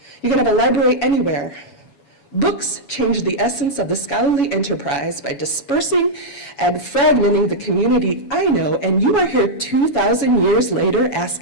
You can have a library anywhere. Books change the essence of the scholarly enterprise by dispersing and fragmenting the community I know, and you are here 2,000 years later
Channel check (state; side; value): late; right; 7.1 ms